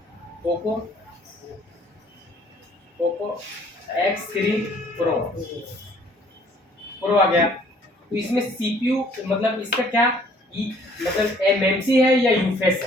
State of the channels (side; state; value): both; normal; correlation 0.59